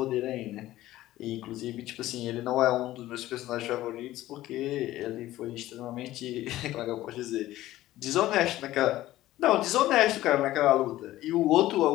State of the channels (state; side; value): quieter; right; 15.4 dB